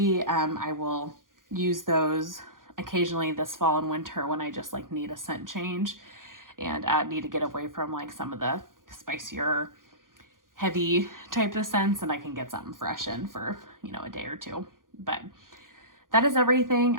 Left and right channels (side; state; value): left; late; 0.90 ms